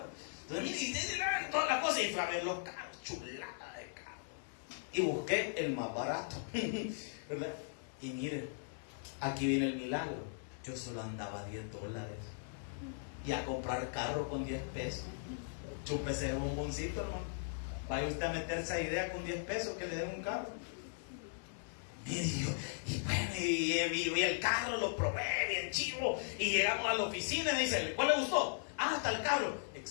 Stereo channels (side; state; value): right; silent; 52 dB below the other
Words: Entonces, mire, y todas las cosas, y fui a ver los carros, chulada de carros. Y busqué el más barato, ¿verdad? Y mire, aquí viene el milagro. Yo solo andaba $10. Y a comprar carro con 10 pesos. Chúpese el bomboncito, hermano. Vaya usted a meterse a idea con 10 pesos que le den un carro. Y el carro lo probé bien chivo. Y llegamos a la oficina y me dice, ¿cuál le gustó? Ah, está el carro.